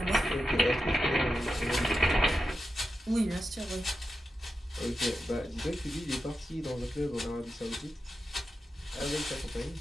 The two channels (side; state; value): both; normal; correlation 0.90